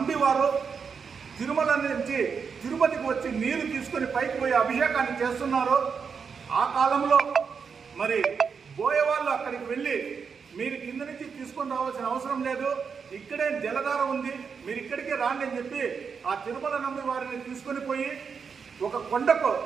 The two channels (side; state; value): left; quieter; 6.0 dB